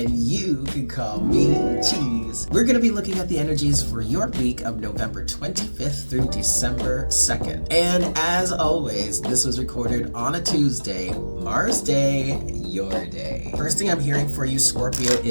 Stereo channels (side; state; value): both; inverted; correlation -1.00